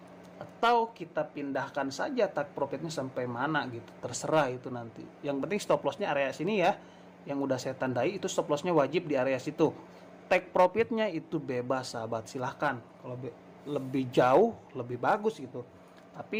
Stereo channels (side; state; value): both; identical; correlation 1.00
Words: Atau kita pindahkan saja target profitnya sampai mana gitu, terserah itu nanti. Yang penting stop lossnya area sini ya, yang udah saya tandai itu stop lossnya wajib di area situ. Take profitnya itu bebas sahabat, silahkan. Kalau lebih jauh lebih bagus gitu.